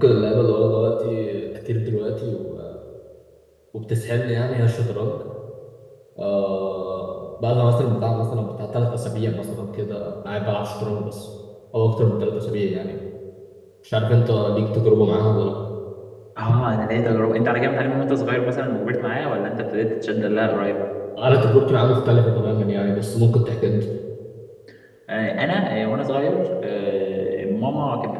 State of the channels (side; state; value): both; identical; correlation 1.00